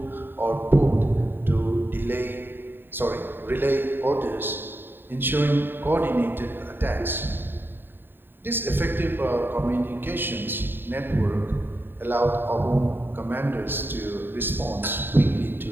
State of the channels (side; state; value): left; late; 0.097 ms